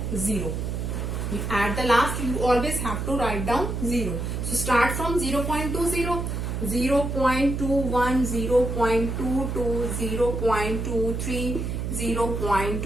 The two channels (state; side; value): noise; right; hum, 3 dB below the sound